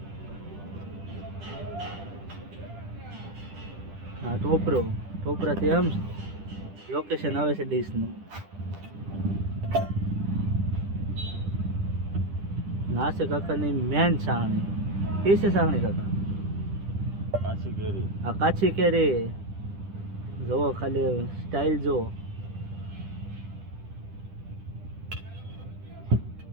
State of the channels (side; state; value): left; late; 10 ms